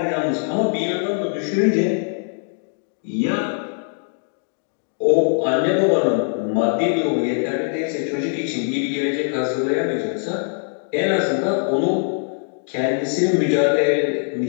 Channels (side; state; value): right; silent; 61 dB below the other